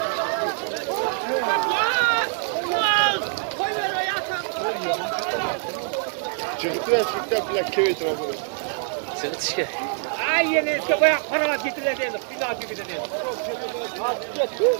Çıktı plak kevet var. Çıkışga. Ay yine bayağı para getirildi. Bina gibi dedi.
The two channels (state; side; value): silent; left; digital silence